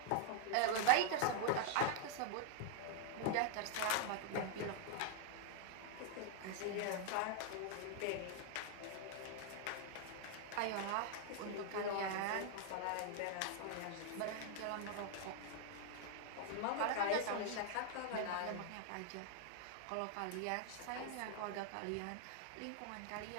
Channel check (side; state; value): both; different; correlation 0.00